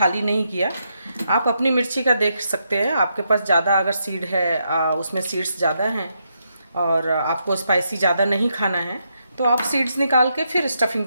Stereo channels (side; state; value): both; inverted; correlation -0.80